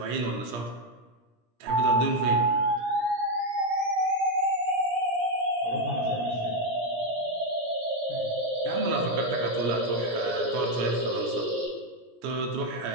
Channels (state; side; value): late; left; 17 ms